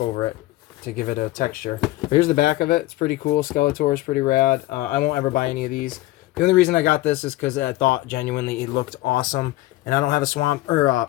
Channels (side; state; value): right; quieter; 17.4 dB